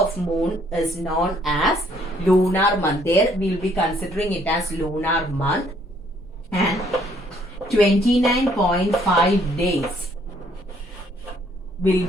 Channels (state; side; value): normal; both; correlation 0.65